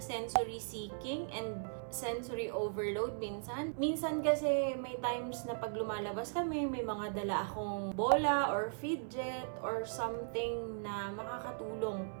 sensory seeking and sensory overload minsan. Minsan kasi may times na pag lumalabas kami, may mga dala akong bola or fidget or something na makakatulong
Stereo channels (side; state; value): left; silent; 53 dB below the other